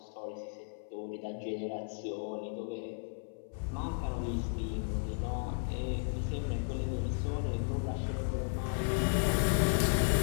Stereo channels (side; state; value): right; silent; 55 dB below the other